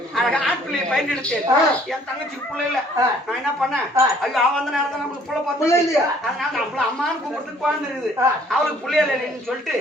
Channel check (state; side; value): normal; both; correlation 0.59